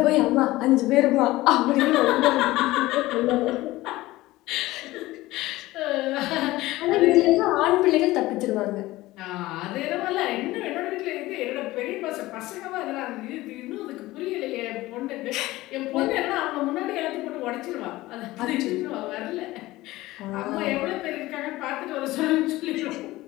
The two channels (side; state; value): right; quieter; 18.1 dB